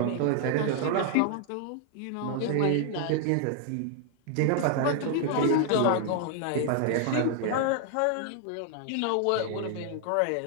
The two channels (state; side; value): different; both; correlation 0.00